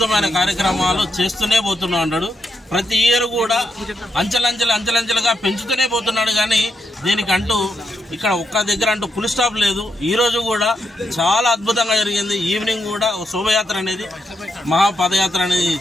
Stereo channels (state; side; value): normal; both; correlation 0.82